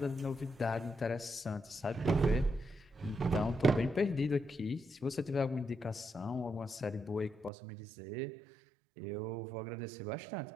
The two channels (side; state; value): left; drops out; at 7.5 s